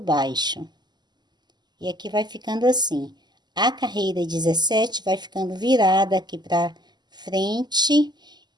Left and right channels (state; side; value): late; left; 0.21 ms